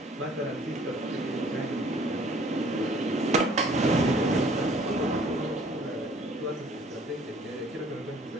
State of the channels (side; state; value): both; normal; correlation 0.56